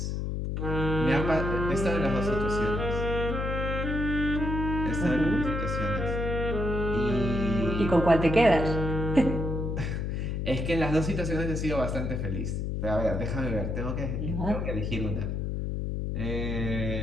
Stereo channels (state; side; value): noise; left; hum, 2 dB below the sound